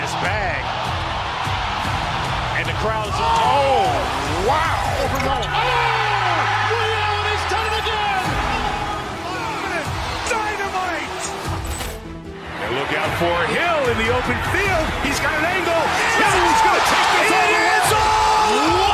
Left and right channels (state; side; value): identical; both; correlation 1.00